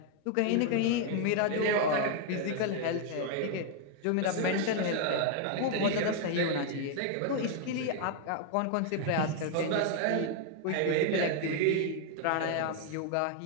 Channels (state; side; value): different; both; correlation 0.00